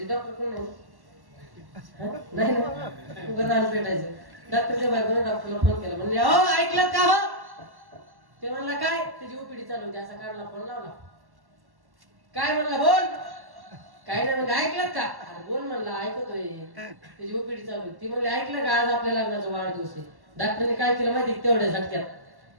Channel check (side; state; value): left; late; 1.1 ms